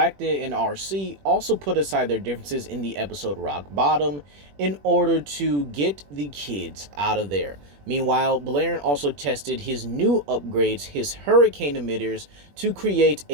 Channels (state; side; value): late; left; 21 ms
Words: and RC also put aside their differences in the episode Rock Bottom in order to get the kids out of there. Meanwhile, Balerion also tested his new upgrades, his hurricane emitters, to create